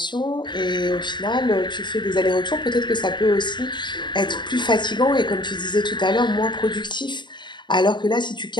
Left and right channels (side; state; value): right; late; 0.22 ms